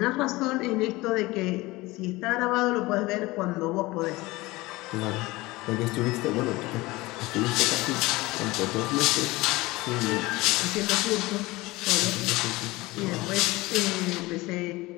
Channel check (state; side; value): quieter; right; 20.8 dB